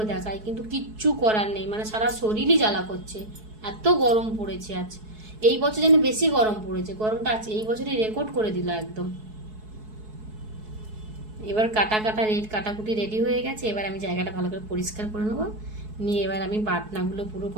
দেখাই, কিন্তু কিচ্ছু করার নেই, মানে সারা শরীরই জ্বালা করছে, এত গরম পড়েছে আজ। এই বছর যেন বেশি গরম পড়েছে, গরমটা আছে এই বছরই রেকর্ড করে দিল একদম। এবার কাটাকুটি রেডি হয়ে গেছে। এবার আমি জায়গাটা ভালো করে পরিষ্কার করে নেবো, নিয়ে এবার আমি বাটনাগুলো পুরো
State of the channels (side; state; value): left; late; 4.7 ms